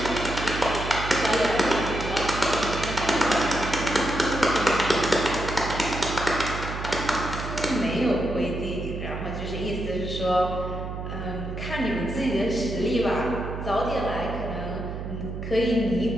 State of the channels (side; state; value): right; noise; hum, 6 dB below the sound